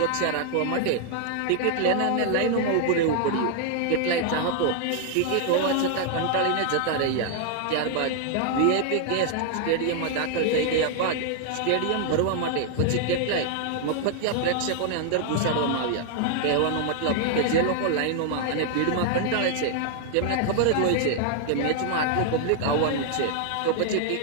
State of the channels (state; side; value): different; both; correlation 0.00